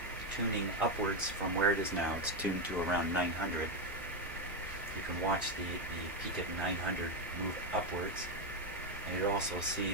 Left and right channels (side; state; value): both; normal; correlation 0.08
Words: tuning upwards from where it is now. It's tuned to around 900. You can watch the peak at 900 move upwards. And you'll also see